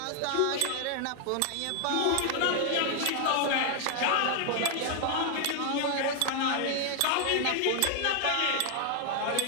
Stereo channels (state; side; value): different; both; correlation 0.00